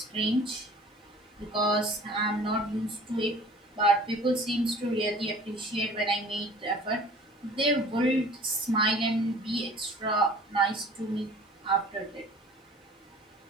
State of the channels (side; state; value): both; normal; correlation 0.47